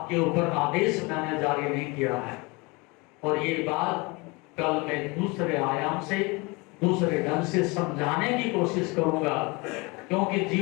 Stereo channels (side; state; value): right; quieter; 26.7 dB